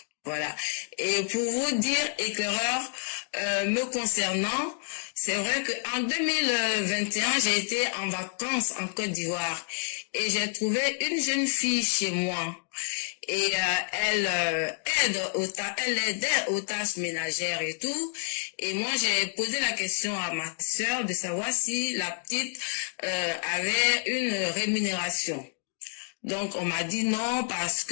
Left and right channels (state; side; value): silent; right; digital silence